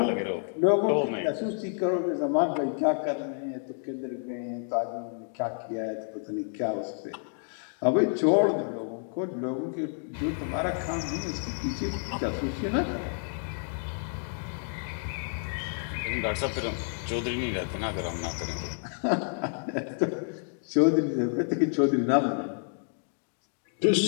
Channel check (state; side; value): silent; right; 58 dB below the other